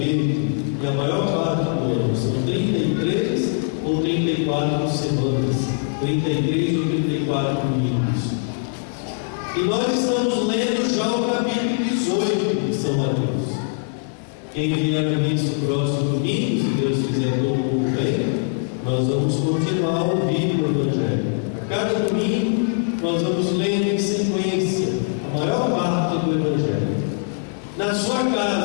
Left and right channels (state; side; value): silent; right; digital silence